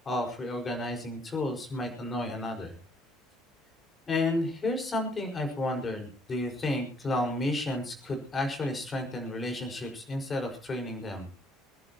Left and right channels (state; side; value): normal; both; correlation 0.66